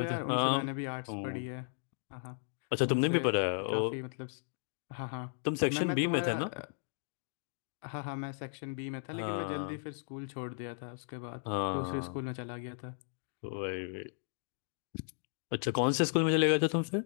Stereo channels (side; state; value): right; silent; digital silence